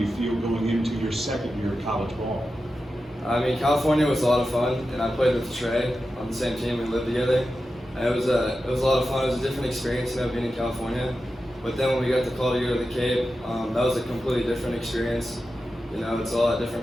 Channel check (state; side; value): normal; both; correlation 0.91